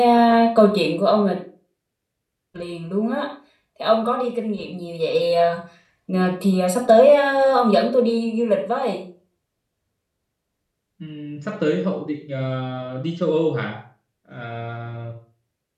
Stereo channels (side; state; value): both; identical; correlation 1.00